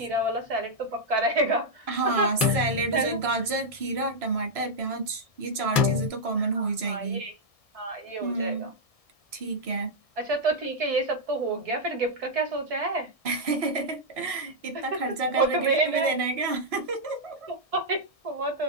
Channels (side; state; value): left; late; 1.6 ms